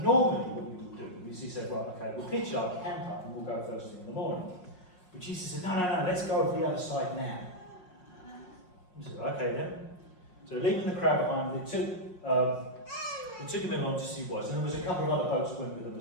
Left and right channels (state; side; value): late; right; 5.5 ms